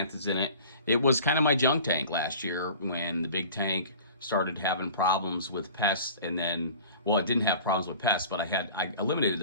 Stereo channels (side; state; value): both; inverted; correlation -0.43